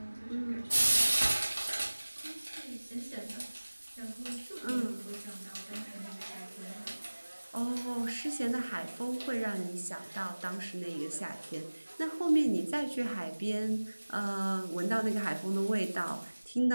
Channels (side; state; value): both; inverted; correlation -1.00